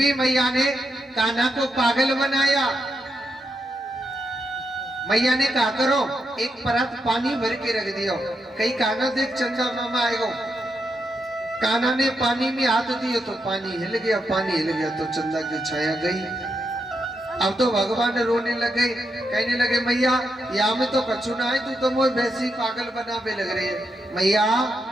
मैया ने कान्हा को पागल बनाया। मैया ने कहा करो एक परत पानी भर के रख दिया। कहीं कान्हा देख चंदा मामा आएगा। कान्हा ने पानी में हाथ दिया तो पानी हिल गया। पानी हिल गया तो चंदा की छाया गई। अब तो भगवान रोने लगे कहने लगे मैया यहाँ में तो कछु ना है। तू तो मोह वैसी पागल बनावे लग रही है। मैया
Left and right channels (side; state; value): both; normal; correlation 0.83